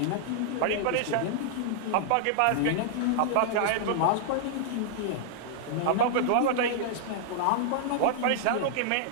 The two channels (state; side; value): different; both; correlation -0.01